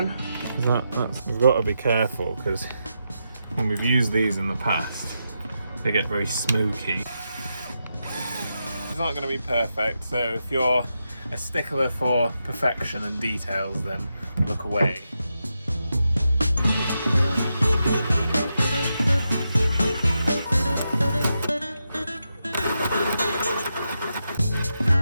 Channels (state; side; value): inverted; both; correlation -0.86